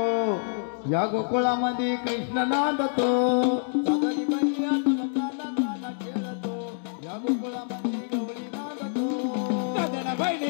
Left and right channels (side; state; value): right; silent; digital silence